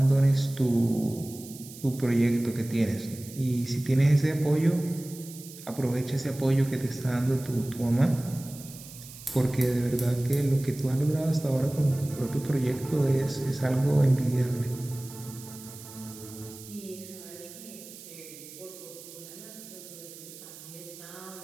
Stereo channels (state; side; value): noise; right; hiss, 16 dB below the sound